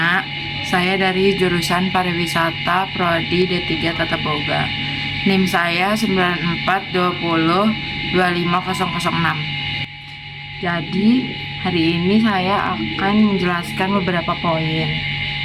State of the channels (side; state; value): both; identical; correlation 1.00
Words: Saya dari jurusan pariwisata prodi D3 Tata Boga. NIM saya 9420250006. Jadi hari ini saya akan menjelaskan beberapa poin.